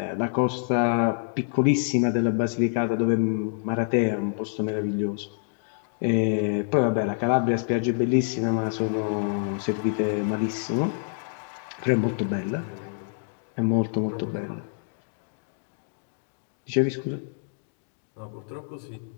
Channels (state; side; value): silent; right; digital silence